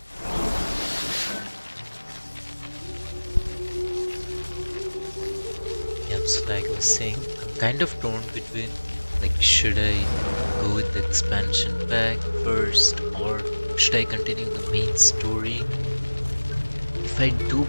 yeah, so like I was saying, I'm kind of torn between like should I go with the expansion pack first or should I continue the main story? If I do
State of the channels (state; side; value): inverted; both; correlation -1.00